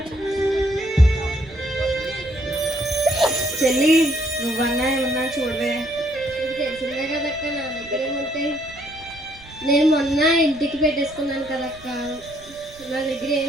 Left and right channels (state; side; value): noise; right; rumble, 22 dB below the sound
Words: చెల్లి నువ్వన్నా ఏమన్నా చూడవే. నీకు తెలిసిందే కదక్క, నా దగ్గర ఏముంటాయి. నేను మొన్న ఇంటికి పెట్టేసుకున్నాను కదక్క, నా దగ్గర ఏం